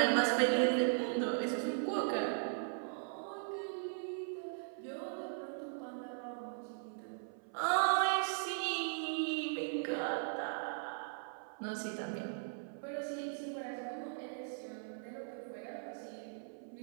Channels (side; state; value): left; silent; 52 dB below the other